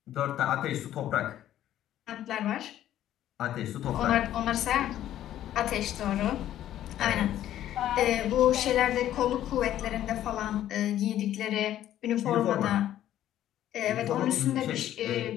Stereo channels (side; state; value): right; quieter; 12.2 dB